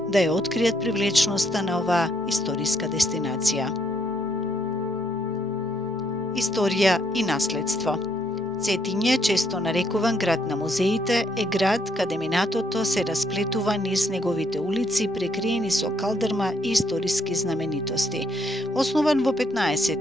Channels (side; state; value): both; normal; correlation 0.72